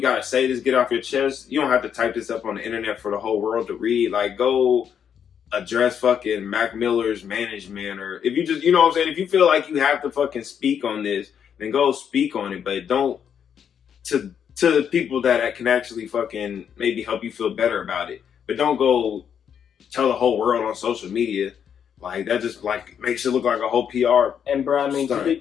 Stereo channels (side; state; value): right; quieter; 8.1 dB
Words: say this, get off your chest, you don't have to type this up on the internet for the whole world to read. Like, go address fucking Mac Miller's management, or if you just, you know what I'm saying, if you feel like you have to fucking speak on this, then go speak on it, but don't, to the people that can actually fucking maybe help you feel better about it. But don't go tell the whole world on social media, like that just like makes it look like a whole PR. And bro, I mean,